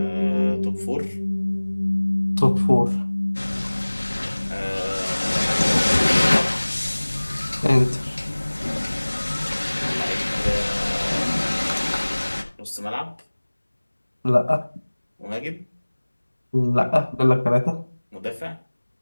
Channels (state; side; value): inverted; both; correlation -1.00